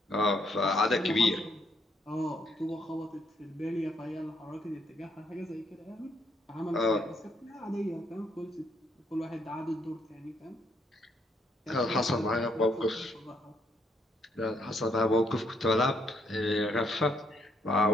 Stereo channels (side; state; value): both; normal; correlation 0.72